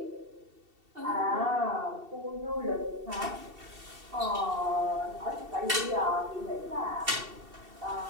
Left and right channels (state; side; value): late; left; 2.7 ms